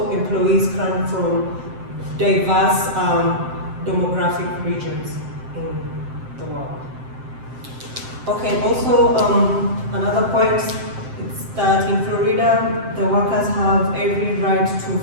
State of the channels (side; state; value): left; late; 7.7 ms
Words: employees come from diverse demographic regions in the world. Okay, also another point is that in Florida, the workers have every right to